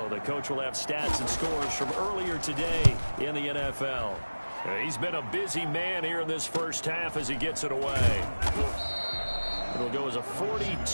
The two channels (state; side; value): inverted; both; correlation -1.00